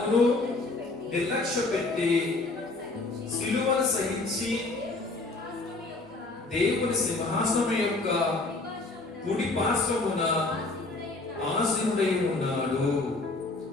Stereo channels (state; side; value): quieter; right; 3.3 dB